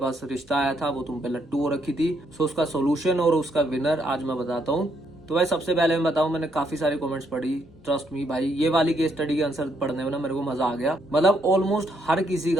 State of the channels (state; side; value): normal; both; correlation 0.74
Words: रिश्ता आया था, वो तुम पे लट्टू हो रखी थी। सो उसका सोल्यूशन और उसका विनर आज मैं बताता हूँ। तो भाई सबसे पहले मैं बताऊं, मैंने काफी सारे कमेंट्स पढ़ी। ट्रस्ट मी भाई, ये वाली केस स्टडी के आंसर पढ़ने में ना मेरे को मजा आ गया। मतलब ऑलमोस्ट हर किसी